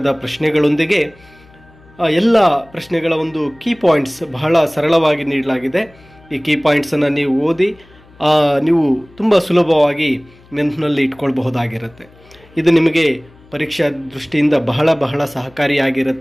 ಪ್ರಶ್ನೆಗಳೊಂದಿಗೆ ಎಲ್ಲ ಪ್ರಶ್ನೆಗಳ ಒಂದು ಕೀ ಪಾಯಿಂಟ್ಸ್ ಬಹಳ ಸರಳವಾಗಿ ನೀಡಲಾಗಿದೆ. ಈ ಕೀ ಪಾಯಿಂಟ್ಸನ್ನು ನೀವು ಓದಿ ನೀವು ತುಂಬ ಸುಲಭವಾಗಿ ನೆನಪಿನಲ್ಲಿ ಇಟ್ಕೊಳ್ಬಹುದಾಗಿರುತ್ತೆ. ಇದು ನಿಮಗೆ ಪರೀಕ್ಷಾ ದೃಷ್ಟಿಯಿಂದ ಬಹಳ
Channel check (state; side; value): noise; left; hum, 27 dB below the sound